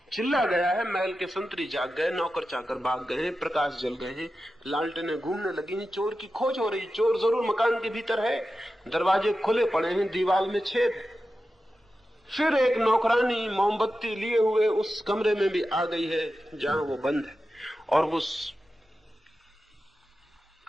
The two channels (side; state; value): both; normal; correlation 0.92